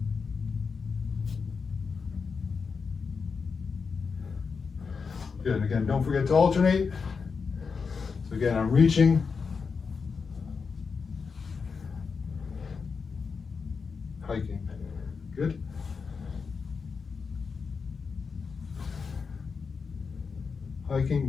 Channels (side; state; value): right; quieter; 5.3 dB